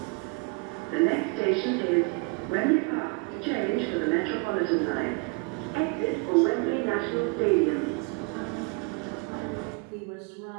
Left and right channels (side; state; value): left; quieter; 30.9 dB